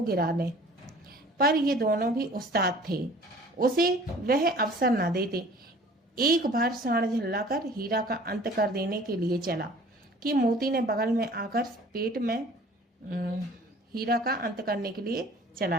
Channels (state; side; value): normal; both; correlation 0.49